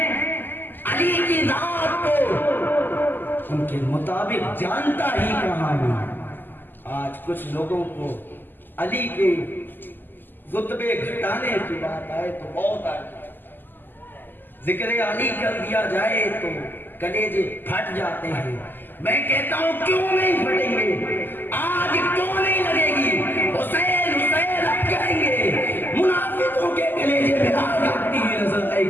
علی کی ذات کو ان کے مطابق جانتا ہی کہاں ہوں۔ آج کچھ لوگوں کو علی کے رتبے گھٹانے کی بات آئے تو بہت آئے، ذکر علی کر دیا جائے تو کلیجے پھٹ جاتے ہیں۔ میں کہتا ہوں کیوں نہیں پھٹیں گے؟ آج کیوں نہیں لگے گی؟ حسین حسین اب کہیں گے، منافقوں کے کلیجے میں آگ لگتی ہوئی نظر آئے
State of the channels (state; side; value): late; right; 0.091 ms